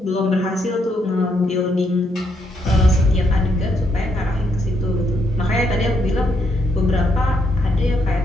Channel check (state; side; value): normal; both; correlation 0.75